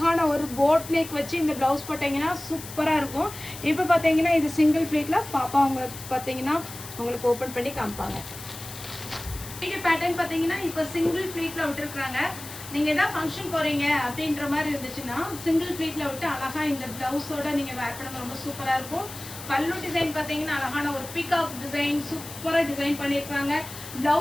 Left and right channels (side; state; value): left; noise; hiss, 13 dB below the sound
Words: ஒரு போட் நெக் வச்சு இந்த ப்ளவுஸ் போட்டிங்கன்னா சூப்பராக இருக்கும். இப்போ பார்த்தீங்கன்னா இது சிங்கிள் ப்ளீட்டில் பாப்பா உங்களுக்கு பார்த்தீங்கன்னா உங்களுக்கு ஓப்பன் பண்ணி காமிப்பாங்க. வீடியோ பேட்டர்ன் பார்த்தீங்கன்னா இப்போ சிங்கிள் ப்ளீட்டில் விட்டுருக்குறாங்க. நீங்கள் எதாவது ஃபங்க்ஷன் போகிறீங்க அப்படின்ற மாதிரி இருந்துச்சுன்னா சிங்கிள் ப்ளீட்டில் விட்டு அழகாக இந்த ப்ளவுஸோட நீங்கள் வேர் பண்ண ரொம்ப சூப்பராக இருக்கும். பல்லு டிசைன் பார்த்தீங்கன்னா அழகான ஒரு பீகாக் டிசைன் சூப்பராக டிசைன் பண்ணியிருக்காங்க.